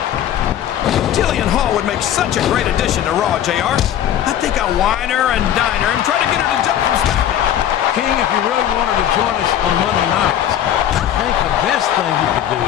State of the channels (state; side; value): quieter; right; 10.7 dB